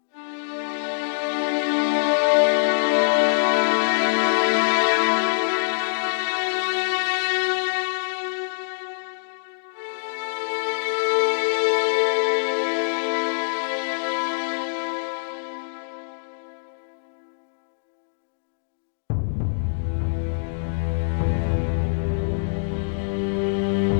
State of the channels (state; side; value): silent; right; digital silence